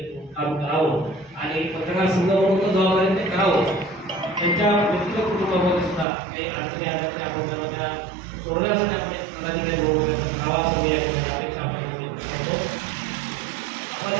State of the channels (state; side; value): drops out; left; at 6.1 s